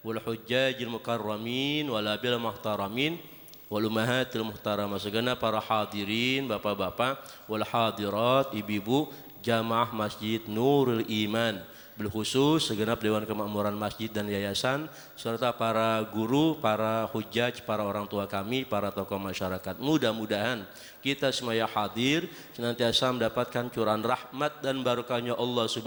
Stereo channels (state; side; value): identical; both; correlation 1.00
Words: wal hujjajil mukarramin wal abil muhtaramin wal ummahatil muhtaramah segenap para hadirin bapak-bapak wal hadirat ibu-ibu jamaah Masjid Nurul Iman bilkhusus segenap Dewan Kemakmuran Masjid dan Yayasan serta para guru, para hujjaj, para orang tua kami, para tokoh masyarakat. Mudah-mudahan kita semua yang hadir senantiasa mendapatkan curahan rahmat dan barakahnya Allah